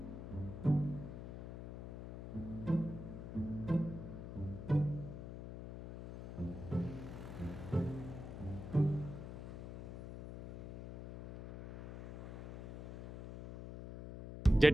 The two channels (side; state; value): left; noise; hum, 9 dB below the sound